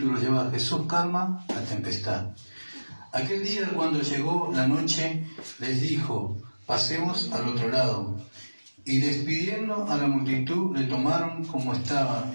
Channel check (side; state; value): both; inverted; correlation -1.00